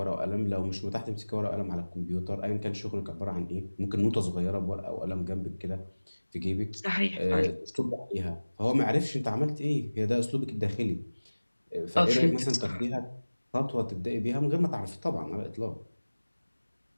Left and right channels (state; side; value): inverted; both; correlation -1.00